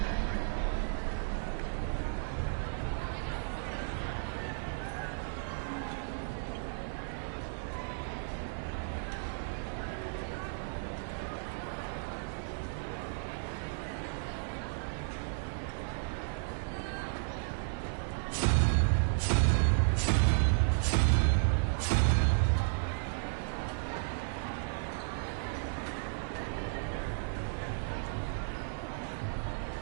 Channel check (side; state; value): left; silent; digital silence